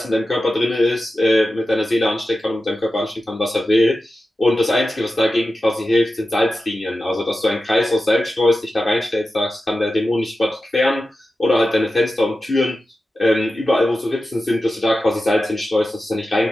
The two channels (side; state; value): both; normal; correlation 0.93